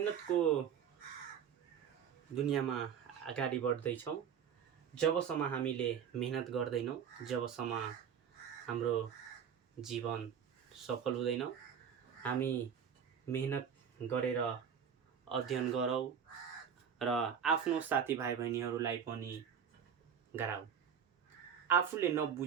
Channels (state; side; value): quieter; left; 7.8 dB